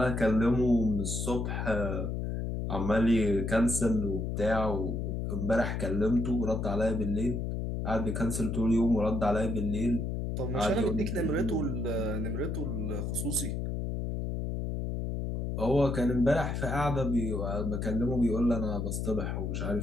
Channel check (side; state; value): left; noise; hum, 2 dB below the sound